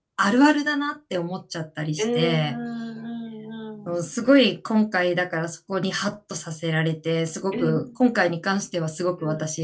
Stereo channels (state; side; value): identical; both; correlation 1.00